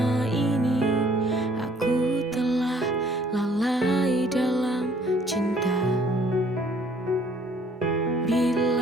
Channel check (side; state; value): both; normal; correlation 0.59